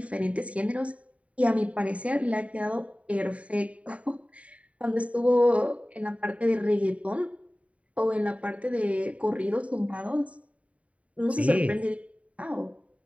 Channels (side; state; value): left; late; 0.066 ms